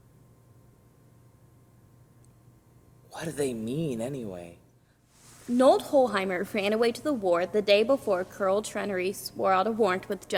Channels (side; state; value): both; identical; correlation 1.00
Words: What do they mean, anyway? Nold Holheimer ran away to the war the day before Curl Trennery swore out a warrant with